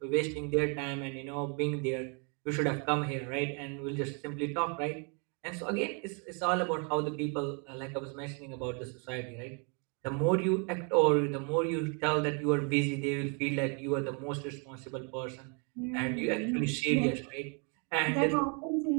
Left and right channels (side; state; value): left; quieter; 36.8 dB